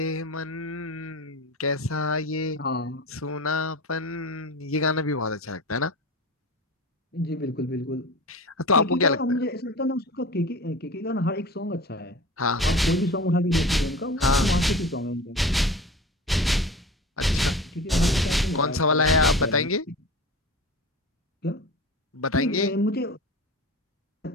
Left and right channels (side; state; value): both; normal; correlation 0.33